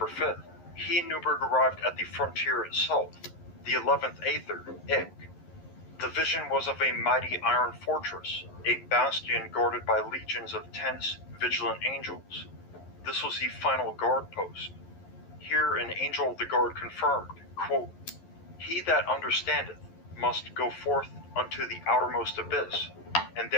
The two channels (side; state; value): right; late; 11 ms